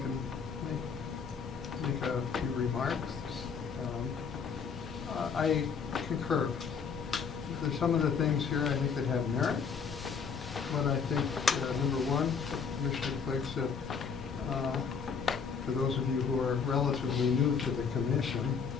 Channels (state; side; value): quieter; right; 6.1 dB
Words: make a few remarks. I concur. There's some of the things here I think that have merit, but I think, number one, Commissioner Clegg said, for those of you who are relatively new to the commission,